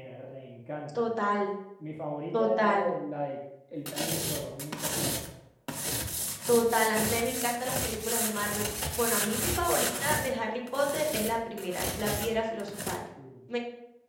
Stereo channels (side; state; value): both; identical; correlation 1.00